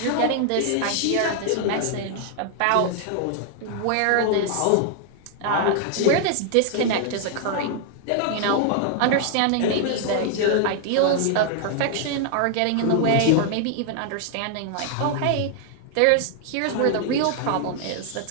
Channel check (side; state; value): both; different; correlation 0.00